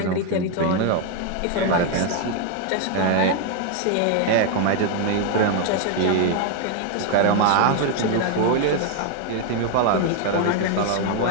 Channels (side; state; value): both; different; correlation 0.01